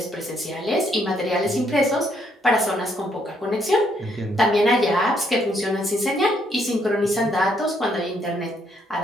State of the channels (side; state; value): both; normal; correlation 0.72